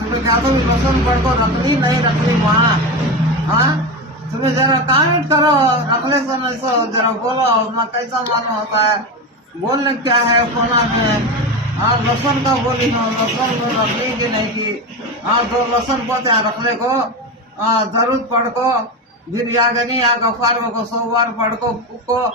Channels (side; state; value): both; normal; correlation 0.19